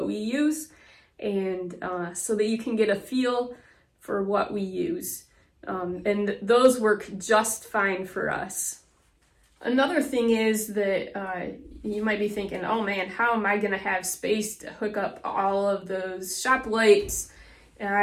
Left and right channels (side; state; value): both; identical; correlation 1.00